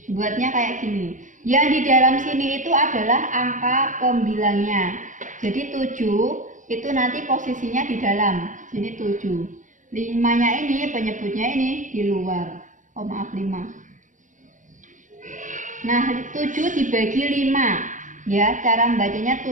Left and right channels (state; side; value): late; left; 0.37 ms